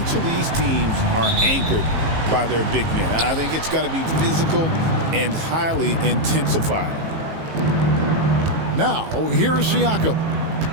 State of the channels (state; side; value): late; left; 18 ms